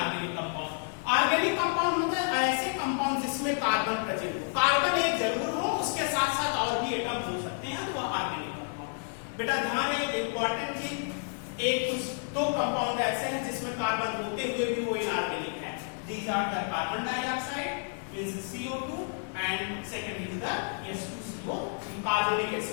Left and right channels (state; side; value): silent; right; 58 dB below the other